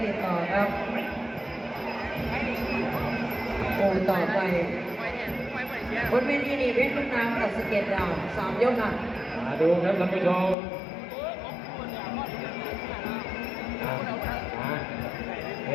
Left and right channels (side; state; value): right; drops out; at 10.6 s